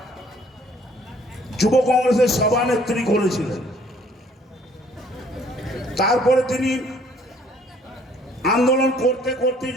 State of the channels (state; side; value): normal; both; correlation 0.59